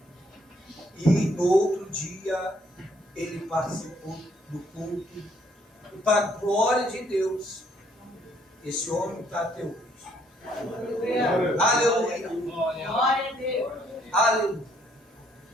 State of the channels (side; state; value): both; normal; correlation 0.67